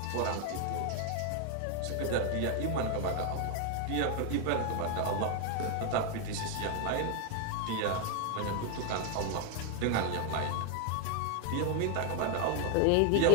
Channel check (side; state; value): both; different; correlation 0.00